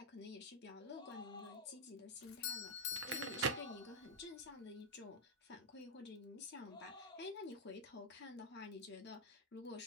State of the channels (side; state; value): both; normal; correlation -0.01